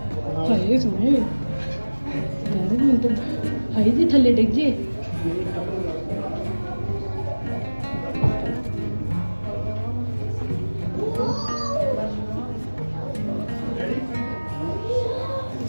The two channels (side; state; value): both; inverted; correlation -1.00